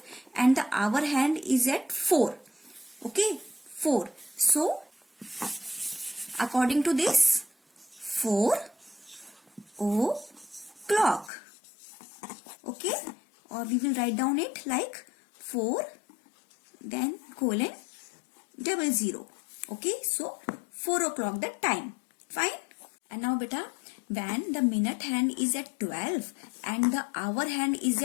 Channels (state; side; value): drops out; right; at 11.3 s